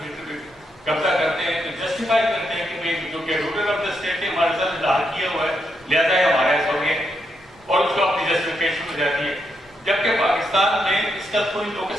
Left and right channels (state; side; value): normal; both; correlation 0.80